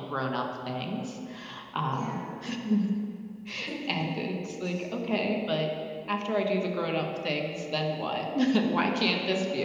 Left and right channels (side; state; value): both; identical; correlation 1.00